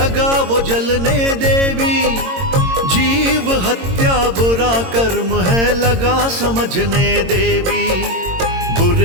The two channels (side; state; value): left; late; 22 ms